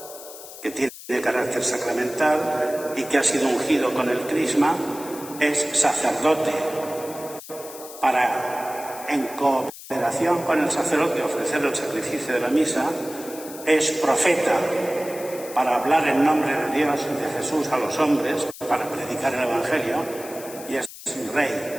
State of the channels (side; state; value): left; noise; hiss, 15 dB below the sound